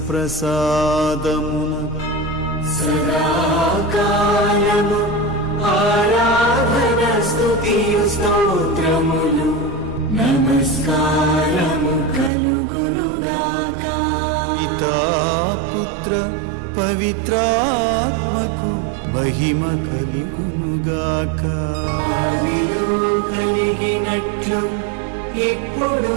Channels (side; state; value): left; drops out; at 12.3 s